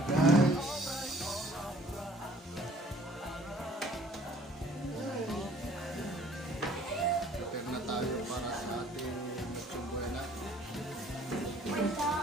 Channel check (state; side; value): normal; both; correlation 0.56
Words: guys. Prepare na tayo para sa ating Noche Buena.